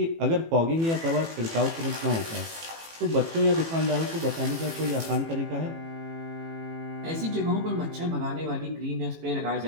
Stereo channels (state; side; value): late; left; 18 ms